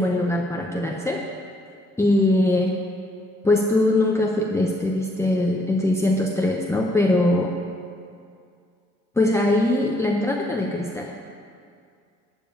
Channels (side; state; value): both; normal; correlation 0.70